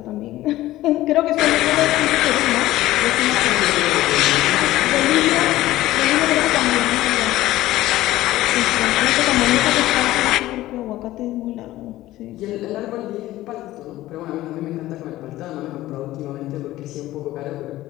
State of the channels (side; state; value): right; quieter; 15.9 dB